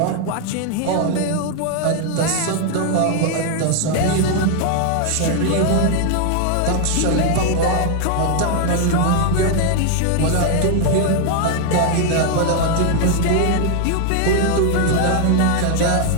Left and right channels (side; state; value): both; different; correlation 0.00